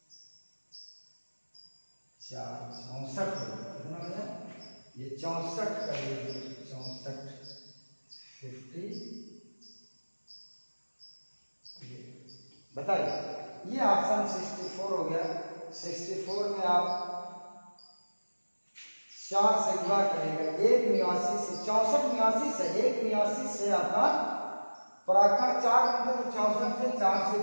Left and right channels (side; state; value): both; inverted; correlation -1.00